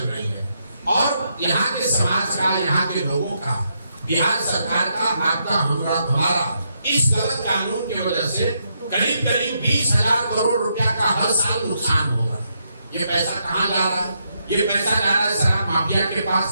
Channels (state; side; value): inverted; both; correlation -0.79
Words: रही है, और यहाँ के समाज का, यहाँ के लोगों का, बिहार सरकार का, आपका, हमारा इस गलत कानून की वजह से करीब 20,000 करोड़ रुपया का हर साल नुकसान हो रहा है। ये पैसा कहाँ जा रहा है? ये पैसा जा रहा है शराब माफिया के